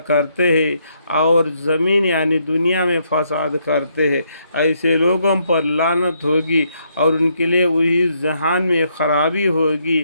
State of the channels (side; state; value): both; inverted; correlation -0.74